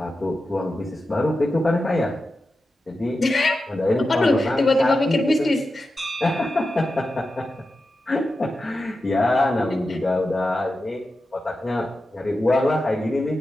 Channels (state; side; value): normal; both; correlation 0.91